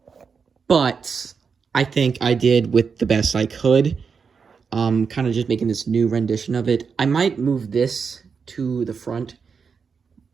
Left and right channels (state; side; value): quieter; left; 5.8 dB